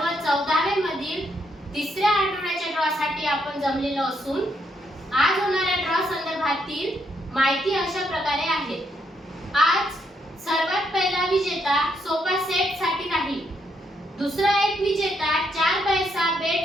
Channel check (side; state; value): both; normal; correlation 0.75